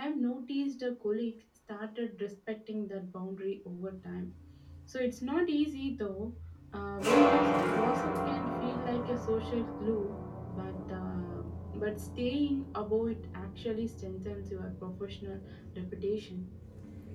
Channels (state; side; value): identical; both; correlation 1.00